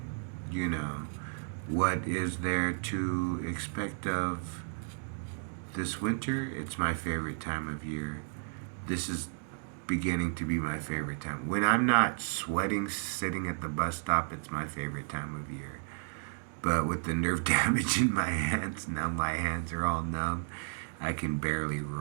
what is there to expect of this winter? It's my favorite time of year. This is beginning to be my favorite time. When I'm not sweating sitting at the bus stop, it's my favorite time of year. But with the nerve damage in my hands, now my hands are all numb. I can barely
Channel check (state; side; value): silent; left; digital silence